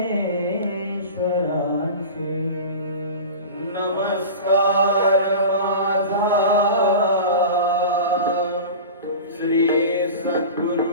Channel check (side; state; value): both; inverted; correlation -0.33